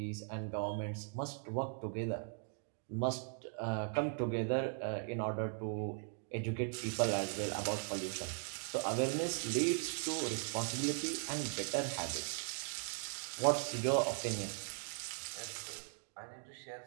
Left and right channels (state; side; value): silent; left; 52 dB below the other